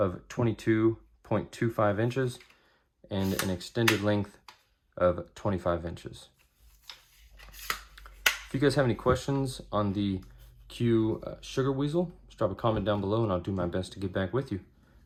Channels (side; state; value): both; identical; correlation 1.00